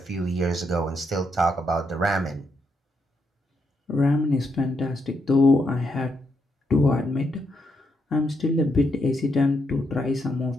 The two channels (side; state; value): both; normal; correlation 0.79